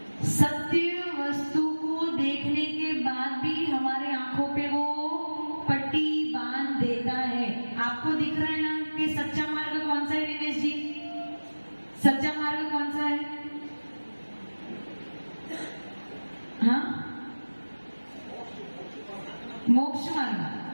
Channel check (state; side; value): inverted; both; correlation -1.00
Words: सत्य वस्तु को देखने के बाद भी हमारे आंखों पे वो पट्टी बांध देता है। आपको दिख रहा है ना कि सच्चा मार्ग कौन सा है? दिनेश जी, सच्चा मार्ग कौन सा है?